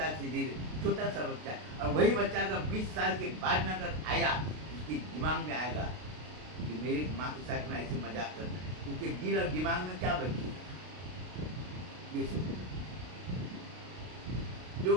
से दे। छोटा सा बच्चा, और वही बच्चा अगर 20 साल के बाद में अगर आया, उसके दिमाग में आएगा कि मेरी माँ के साथ में ऐसे मजाक करना, उसके दिल और दिमाग में क्या बचेगा, ये सोचो। जो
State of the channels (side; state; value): left; late; 32 ms